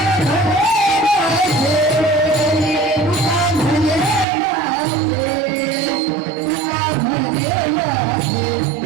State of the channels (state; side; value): drops out; left; at 4.2 s